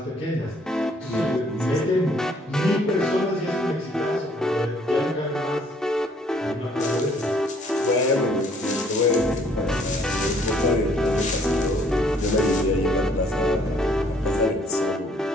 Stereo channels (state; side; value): normal; both; correlation 0.62